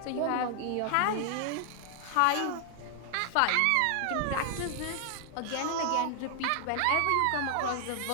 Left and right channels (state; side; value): different; both; correlation 0.00